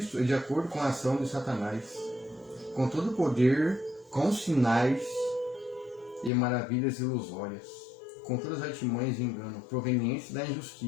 é de acordo com a ação de Satanás, com todo o poder, com sinais e maravilhas ilusórias, com todas as artimanhas de engano, provenientes da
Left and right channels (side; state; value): right; drops out; at 6.3 s